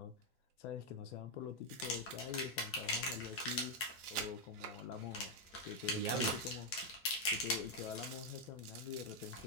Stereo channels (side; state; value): both; normal; correlation 0.01